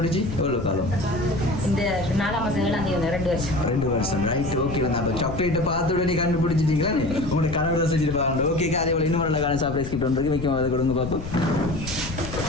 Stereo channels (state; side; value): noise; left; rumble, 9 dB below the sound